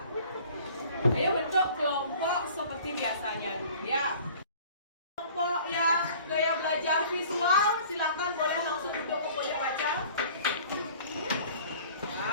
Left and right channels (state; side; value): inverted; both; correlation -0.48